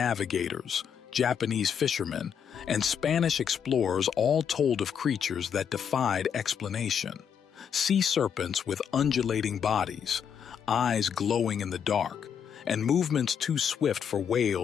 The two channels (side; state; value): right; quieter; 7.8 dB